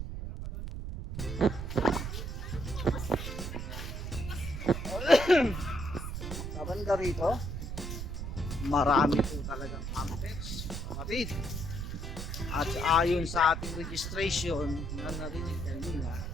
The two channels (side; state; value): right; noise; rumble, 5 dB below the sound